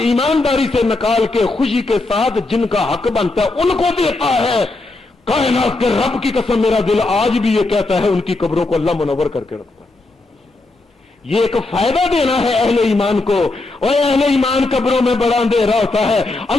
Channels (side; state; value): right; quieter; 3.2 dB